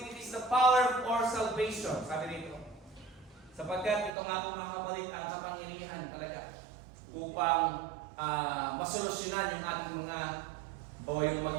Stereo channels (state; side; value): drops out; left; at 4.1 s